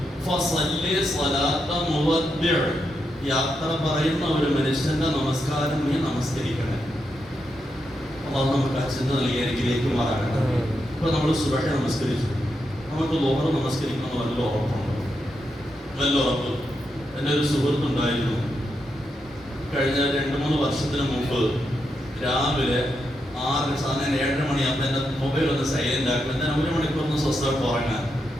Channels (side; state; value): both; normal; correlation 0.84